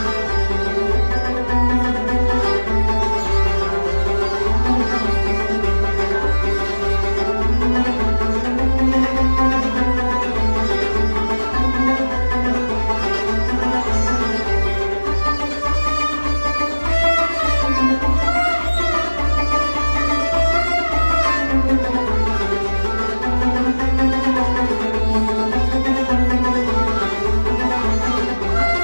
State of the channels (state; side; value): inverted; both; correlation -1.00